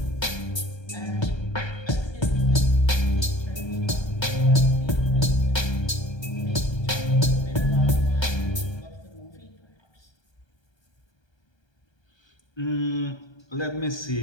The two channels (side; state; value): right; late; 1.3 ms